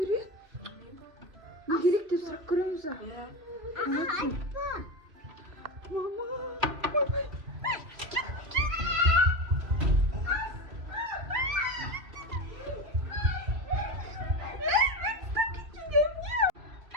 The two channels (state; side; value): late; left; 2.8 ms